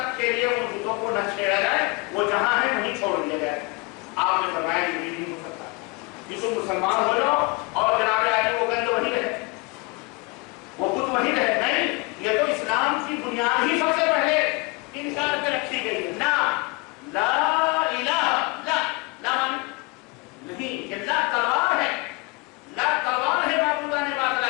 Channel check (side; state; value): right; quieter; 27.0 dB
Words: کے لیے ان بتوں کو نہ چھیڑا جائے، وہ جہاں ہے وہیں چھوڑ دیا جائے۔ آپ نے فرمایا یہ نہیں ہو سکتا، کہ تم مسلمان ہو جاؤ اور جناب علی وہ گند وہیں رہے، وہ بت وہیں رہے۔ نہیں، یہ تو اسلام کی بنیاد ہی سب سے پہلے انکار پہ رکھی گئی ہے۔ نہ لا الہ، لا مانی نہیں، یہ لا تلوار ہے، لا تلوار ہے معبودان